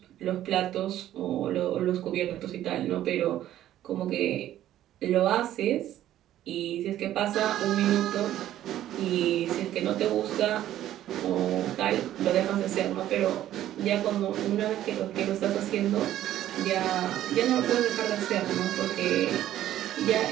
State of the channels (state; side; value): quieter; left; 12.7 dB